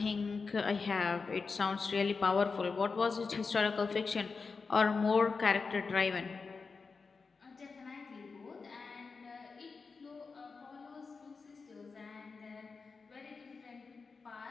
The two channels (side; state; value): right; quieter; 4.7 dB